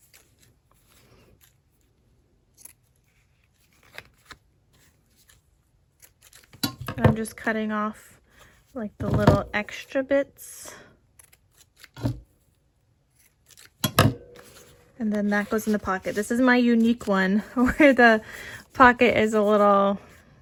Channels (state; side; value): identical; both; correlation 1.00